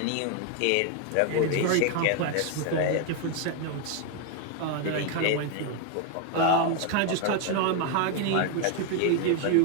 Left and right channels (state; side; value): different; both; correlation 0.01